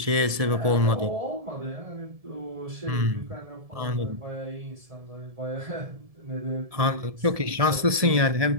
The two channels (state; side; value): late; left; 1.7 ms